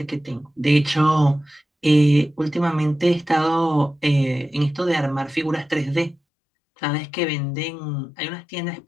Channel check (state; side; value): drops out; right; at 6.2 s